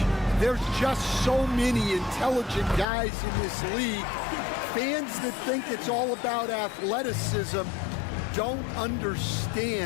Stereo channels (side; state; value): right; drops out; at 2.9 s